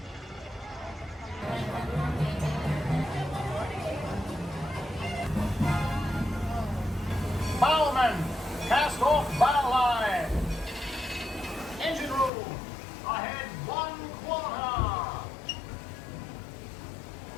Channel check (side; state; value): right; drops out; at 12.3 s